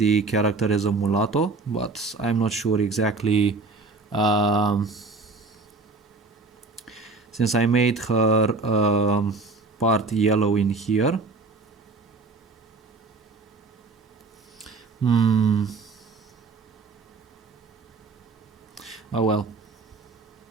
character as a mulatto, but I'm not sure exactly, since I made her part yellow in here. Oh well.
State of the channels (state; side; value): quieter; left; 3.8 dB